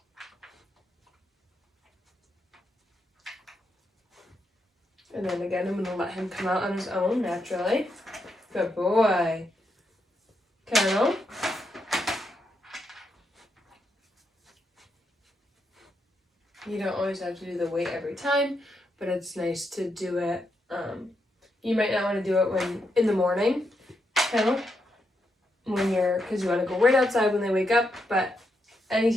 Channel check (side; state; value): both; normal; correlation 0.81